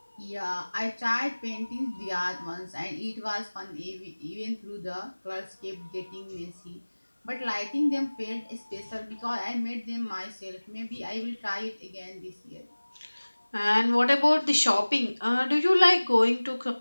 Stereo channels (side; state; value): both; inverted; correlation -1.00